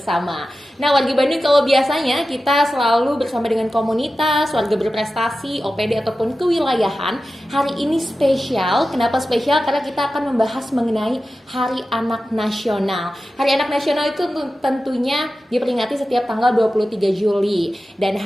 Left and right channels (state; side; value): normal; both; correlation 0.93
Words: Nah, warga Bandung kalau biasanya kita selalu bersama dengan komunitas, warga berprestasi, OPD ataupun kewilayahan. Hari ini spesial. Kenapa spesial? Karena kita akan membahas mengenai Hari Anak Nasional. Hari Anak Nasional itu tentunya diperingati setiap tanggal 23 Juli. Dan